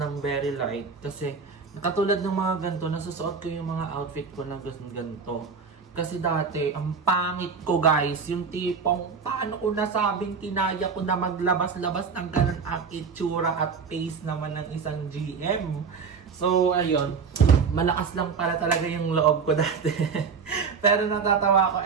very light kasi katulad ng mga ganito, nasusuot ko yung mga outfit ko na ganito. Kasi dati, ang pangit ko, guys, yung tipong paano ko nasabing kinaya ko na maglabas-labas ng ganun ang itsura at face naman ng isang GM. So, ayun. Malakas lang para talaga yung loob ko dati. Pero natatawa ako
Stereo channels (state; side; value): quieter; left; 5.5 dB